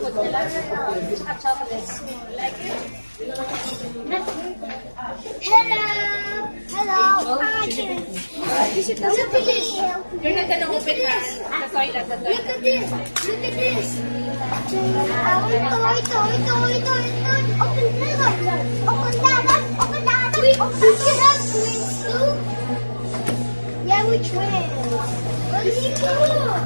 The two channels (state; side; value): inverted; both; correlation -1.00